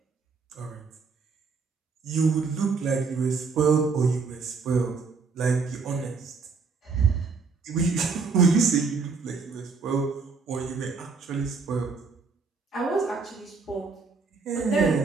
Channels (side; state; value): left; quieter; 4.8 dB